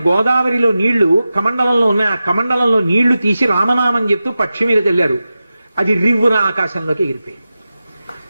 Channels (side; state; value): both; inverted; correlation -0.93